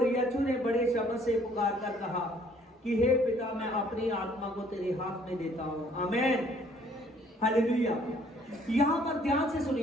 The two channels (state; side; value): normal; both; correlation 0.60